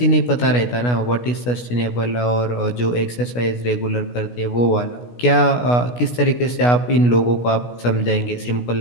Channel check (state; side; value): late; right; 16 ms